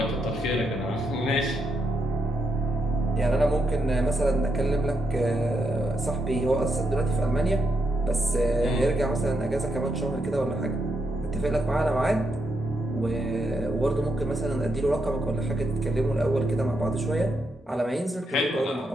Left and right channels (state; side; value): normal; both; correlation 0.80